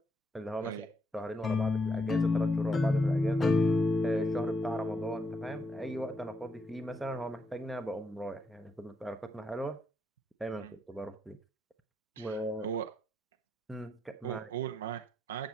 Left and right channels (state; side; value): normal; both; correlation 0.79